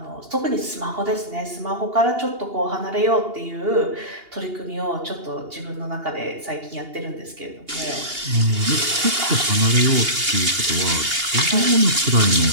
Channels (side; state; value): left; late; 2.8 ms